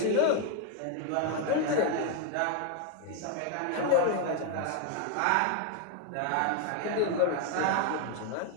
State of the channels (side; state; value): both; different; correlation 0.01